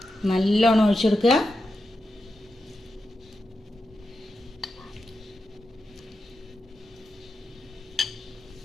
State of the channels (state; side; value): normal; both; correlation 0.89